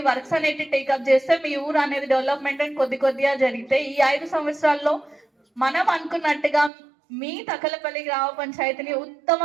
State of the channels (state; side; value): drops out; left; at 6.7 s